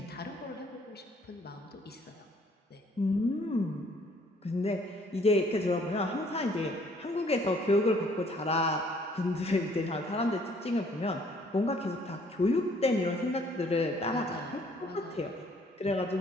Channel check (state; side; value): normal; both; correlation 0.61